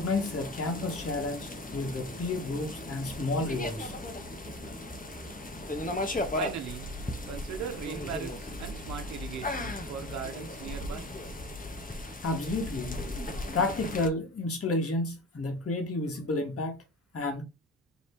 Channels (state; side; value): normal; both; correlation 0.34